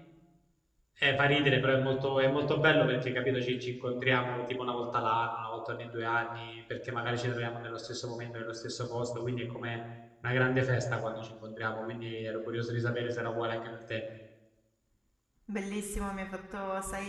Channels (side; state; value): both; identical; correlation 1.00